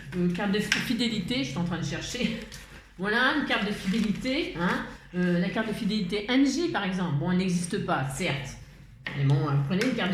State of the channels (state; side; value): identical; both; correlation 1.00